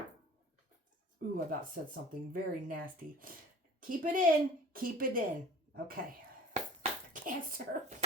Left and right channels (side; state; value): both; normal; correlation 0.45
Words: Ooh, I about said something very nasty. Keep it in. Keep it in. Okay. Cancer.